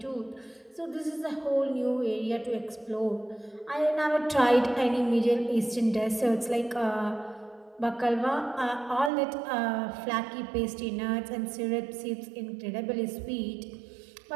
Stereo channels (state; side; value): drops out; left; at 9.1 s